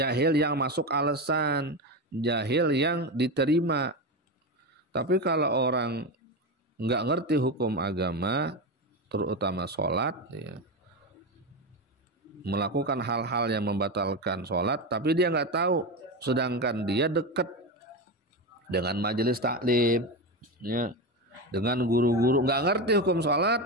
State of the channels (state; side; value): normal; both; correlation 0.17